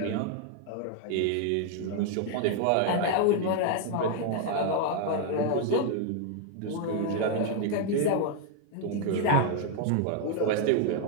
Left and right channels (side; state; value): both; different; correlation 0.00